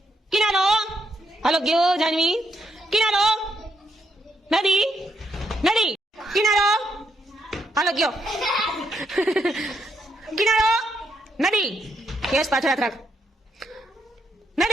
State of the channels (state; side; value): normal; both; correlation 0.78